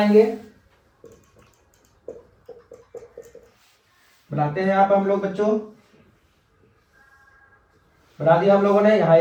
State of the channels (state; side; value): identical; both; correlation 1.00